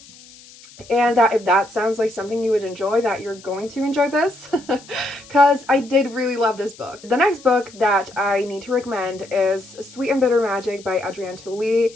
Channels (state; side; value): noise; left; hiss, 22 dB below the sound